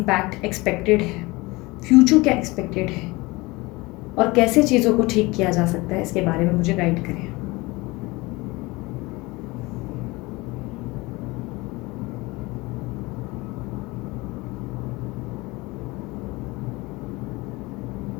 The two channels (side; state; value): right; quieter; 22.8 dB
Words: एक्सपेक्टेड है, फ्यूचर क्या एक्सपेक्टेड है और कैसे चीज़ों को ठीक किया जा सकता है, इसके बारे में मुझे गाइड करें।